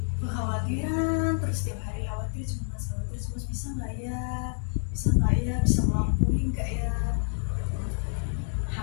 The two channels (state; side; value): silent; right; 59 dB below the other